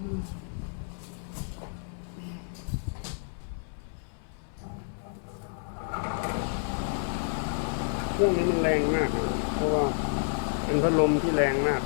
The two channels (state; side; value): silent; right; 58 dB below the other